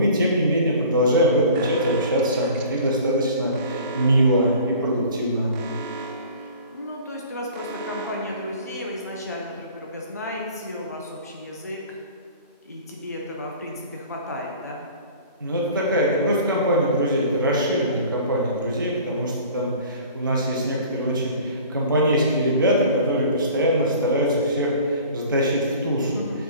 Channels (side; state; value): both; inverted; correlation -0.45